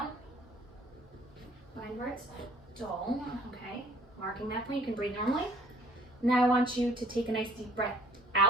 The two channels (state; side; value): normal; both; correlation 0.58